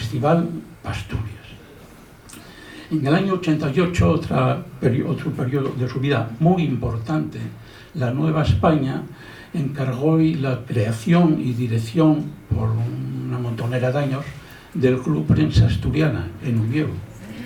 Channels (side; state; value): both; identical; correlation 1.00